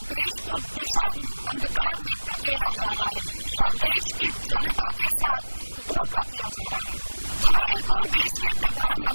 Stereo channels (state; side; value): inverted; both; correlation -1.00